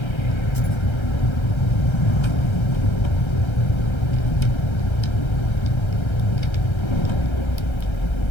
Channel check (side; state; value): right; late; 1.3 ms